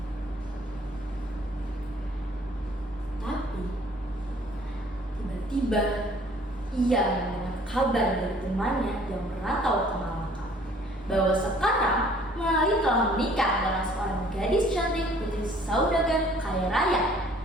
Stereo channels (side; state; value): both; normal; correlation 0.56